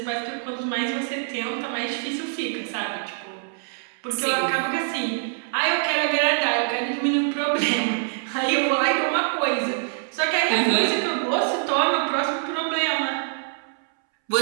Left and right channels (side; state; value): left; silent; 62 dB below the other